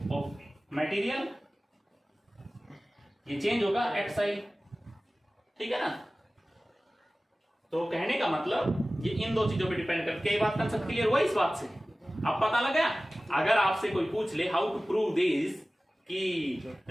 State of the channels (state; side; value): normal; both; correlation 0.97